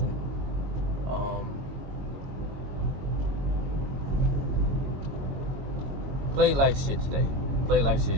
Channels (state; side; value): late; left; 22 ms